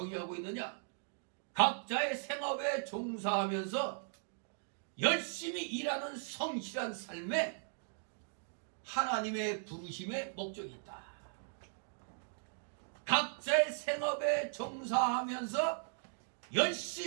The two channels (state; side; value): silent; left; digital silence